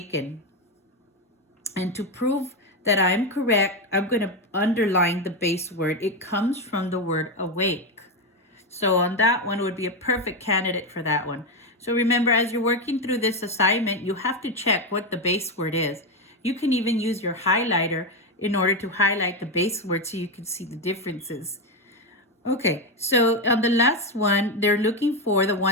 And to prove that I'm correct, I'm going to underline the base word. It comes from the word awake. So on that one, it would be a perfect candidate for that one. So remember, as you're working through this assignment, you have to check what the base word is. You can even use your highlighter in order to highlight the base word so you can see the differences. Okay, so on the last one, they're looking for the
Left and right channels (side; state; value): both; normal; correlation 0.10